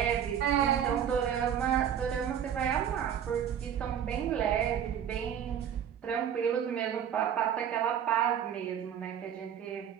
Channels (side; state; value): left; quieter; 9.0 dB